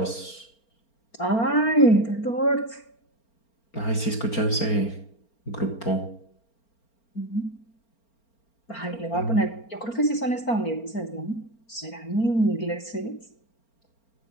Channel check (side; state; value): right; late; 4.4 ms